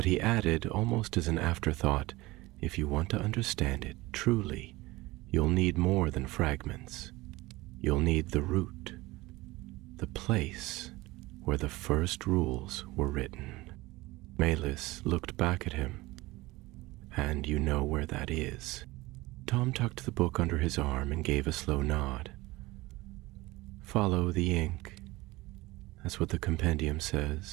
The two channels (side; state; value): left; quieter; 20.3 dB